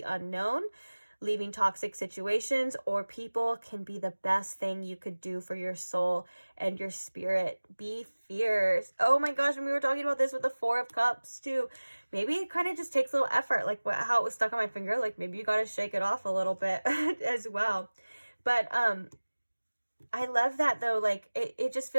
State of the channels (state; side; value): inverted; both; correlation -1.00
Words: unknown? Leaving toxic situations or people can be the best thing you could do for your soul and your spirit. Be fierce. Oh my gosh, when we were talking about this with the 4 of Cups too, maybe it kind of just takes a little effort, like how it was stuck on my finger. Like maybe you got to shake it off a little bit as well. But I love that though. Like it just